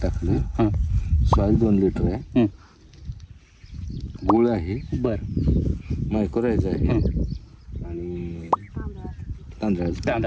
टाकले. हां सॉईल 2 लिटर आहे. गुळ आहे. बरं मायक्रोरायझ आहे. आणि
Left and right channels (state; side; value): identical; both; correlation 1.00